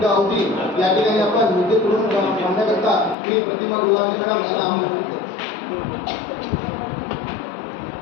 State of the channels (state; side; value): drops out; right; at 3.2 s